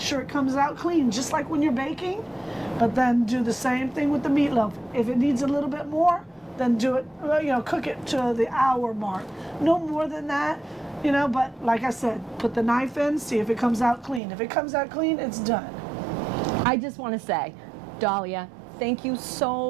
it comes out clean, just like when you're baking, but then do the same thing with the meatloaf. If it needs a little bit more, then do it, cook it to the hour mark. No more than that, but like I said, put the knife in, see if it comes out clean. If it comes out clean, it's done. I just want to say, Dalia, thank you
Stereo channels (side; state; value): left; drops out; at 14.2 s